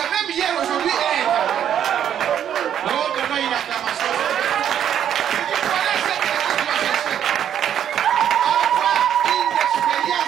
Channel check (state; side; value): quieter; left; 9.7 dB